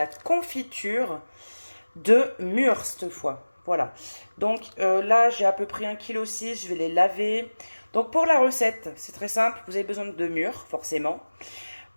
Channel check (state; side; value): inverted; both; correlation -1.00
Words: confiture de mûres cette fois. Voilà, donc là j'ai à peu près 1,6 kg, je vais les laver. Donc pour la recette, c'est très simple, vous avez besoin de mûres forcément,